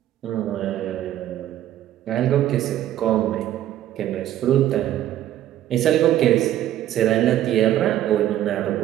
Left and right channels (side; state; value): left; quieter; 12.6 dB